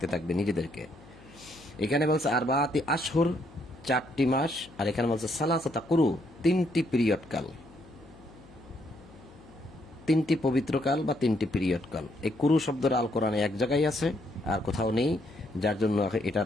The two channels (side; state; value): left; noise; hum, 22 dB below the sound